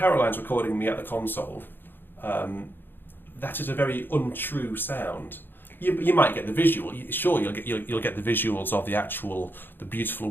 recording me at the console, that is a very untrue sound. You might get the visual. Sure, you'll get the visuals of the beautiful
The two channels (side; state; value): right; late; 0.097 ms